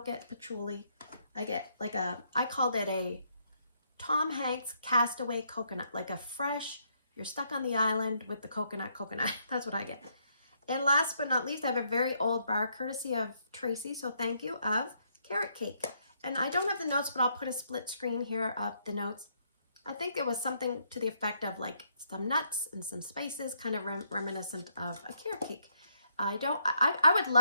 get patchouli. I get like I called it a Tom Hanks castaway coconut, like a fresh, you're stuck on the island with the coconut. That's what I get. And last but not least, I have a very old bar, courtesy of Tracy, so thank you, of carrot cake. And I don't have the notes, but I'll put a split screen here of the notes. I think it was something to the effect of like some nuts and some spices, kind of reminiscent of a carrot cake. I would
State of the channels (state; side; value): inverted; both; correlation -0.73